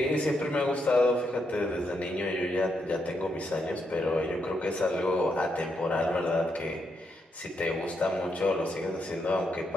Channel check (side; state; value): both; normal; correlation 0.80